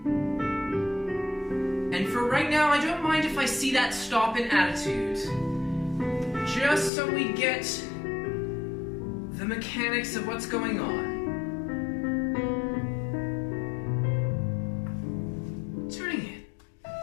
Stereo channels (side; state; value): right; drops out; at 6.9 s